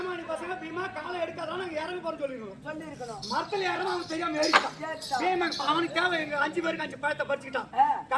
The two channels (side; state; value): both; identical; correlation 1.00